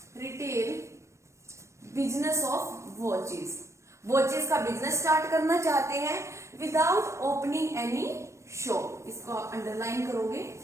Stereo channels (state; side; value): late; left; 0.14 ms